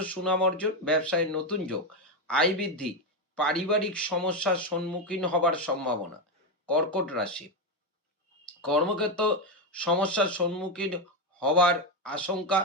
সুনাম অর্জন, ব্যবসায় নতুন যোগ, আয় বৃদ্ধি, পারিবারিক সমস্যার সম্মুখীন হবার সম্ভাবনা। কর্কট রাশি, কর্মক্ষেত্র সমস্যার সম্মুখীন হবার আশঙ্কা,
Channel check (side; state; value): both; normal; correlation 0.09